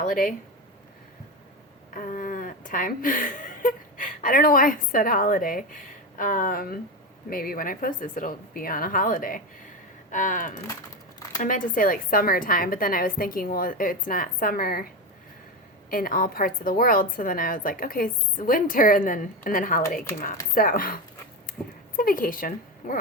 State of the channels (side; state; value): both; normal; correlation 0.18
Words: time. I don't know why I said holiday. Maybe when I post this, it'll be on a holiday. I meant to say like summertime, but then I was thinking, well, it's not summer in all parts of the world. So then I was like, okay, it's winter, and then holiday came out. So it's a vacation. We're